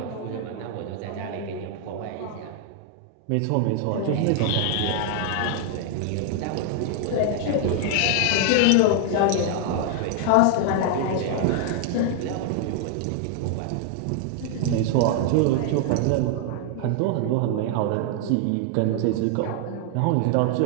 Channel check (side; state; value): both; different; correlation 0.00